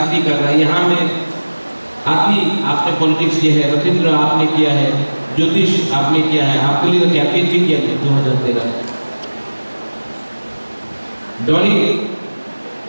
कर रहे हैं। यहाँ में आपने पॉलिटिक्स किया है, रविंद्र आपने किया है, ज्योतिष आपने किया है, आपके लिए तो कैंपेन भी किया है 2013। Dolly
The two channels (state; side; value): inverted; both; correlation -1.00